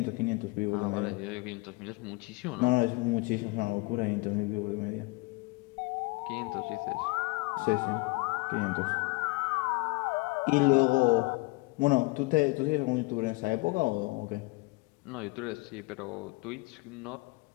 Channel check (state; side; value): quieter; right; 25.4 dB